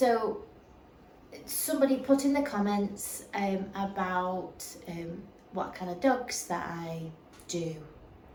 somebody put in the comments about what kind of dogs that I do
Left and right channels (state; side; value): identical; both; correlation 1.00